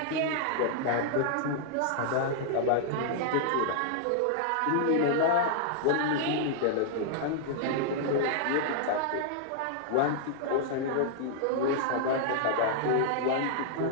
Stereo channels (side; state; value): both; different; correlation -0.01